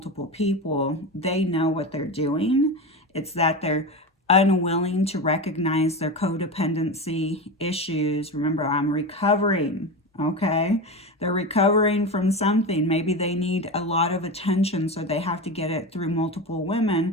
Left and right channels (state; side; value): normal; both; correlation 0.22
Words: people, they know what they're doing. It's that they're unwilling to recognize their codependency issues. Remember, I'm recovering, okay? They're recovering from something. Maybe they need a lot of attention, so they have to get it through multiple